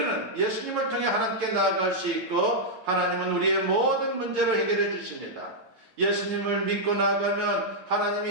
예수님을 통해 하나님께 나아갈 수 있고 하나님은 우리의 모든 문제를 해결해 주십니다. 예수님을 믿고 나아가면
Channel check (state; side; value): late; left; 8.8 ms